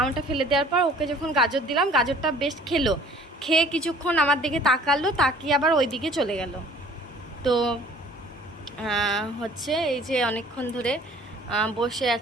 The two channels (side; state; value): both; normal; correlation 0.52